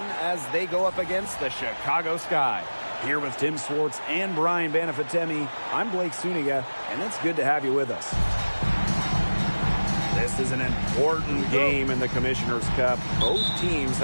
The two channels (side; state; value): both; inverted; correlation -1.00